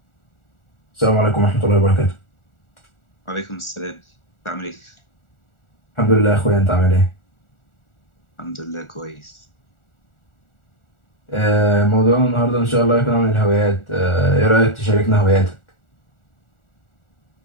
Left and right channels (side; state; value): right; late; 1.4 ms